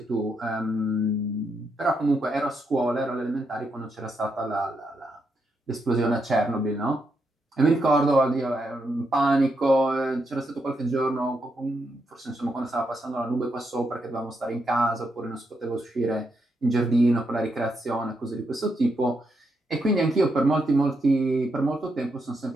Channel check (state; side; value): normal; both; correlation 0.81